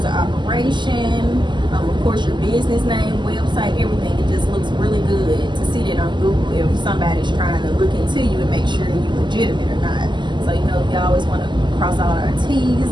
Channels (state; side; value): late; left; 0.22 ms